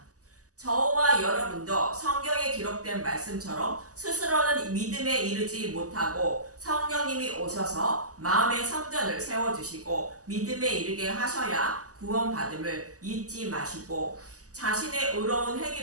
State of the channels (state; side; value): late; left; 0.67 ms